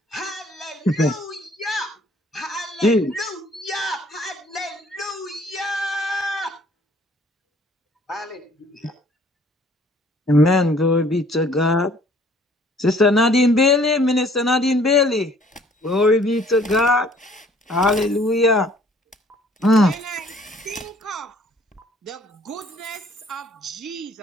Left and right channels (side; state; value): both; normal; correlation 0.57